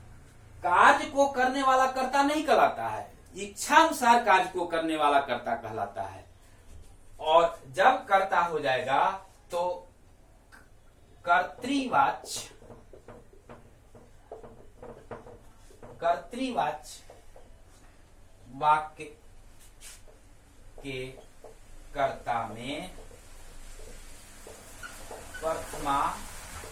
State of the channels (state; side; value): identical; both; correlation 1.00